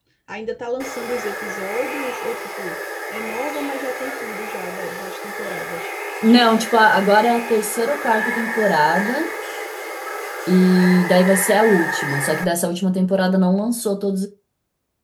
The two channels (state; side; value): identical; both; correlation 1.00